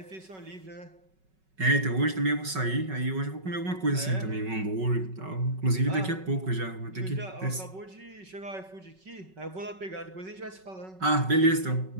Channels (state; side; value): late; left; 5.3 ms